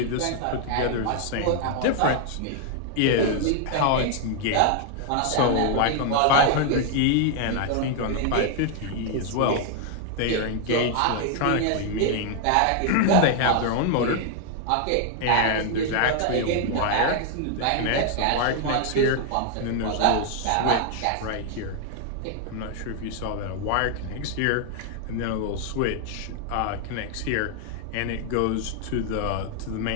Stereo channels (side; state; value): both; different; correlation 0.00